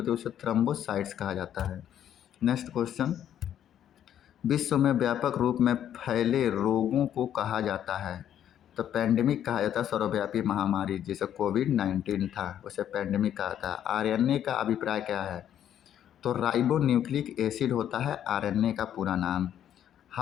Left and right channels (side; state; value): right; quieter; 10.3 dB